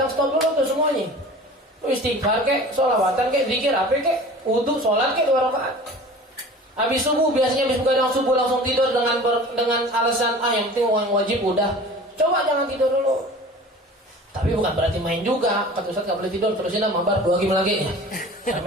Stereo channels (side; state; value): both; normal; correlation 0.41